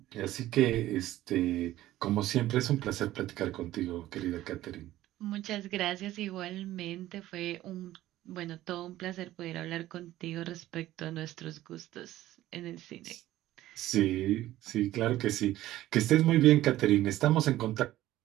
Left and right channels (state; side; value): quieter; left; 14.9 dB